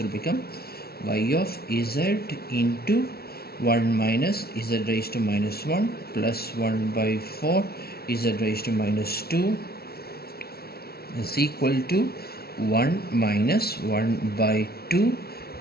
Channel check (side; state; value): right; late; 0.45 ms